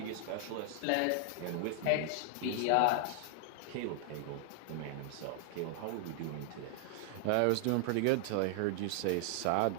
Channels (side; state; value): both; different; correlation 0.00